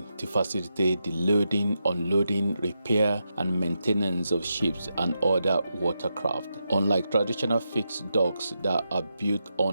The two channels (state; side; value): inverted; both; correlation -0.86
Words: to facilitate the loading, unloading, repair, and maintenance of ships and other watercraft. Unlike traditional fixed docks that are built